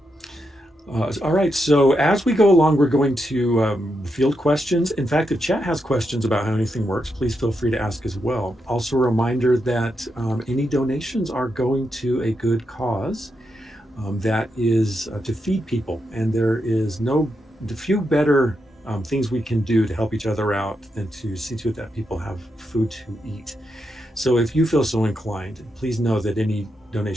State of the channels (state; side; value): normal; both; correlation 0.84